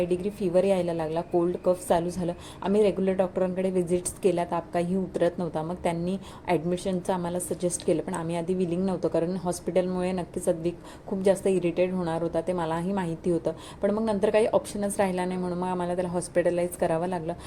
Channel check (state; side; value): identical; both; correlation 1.00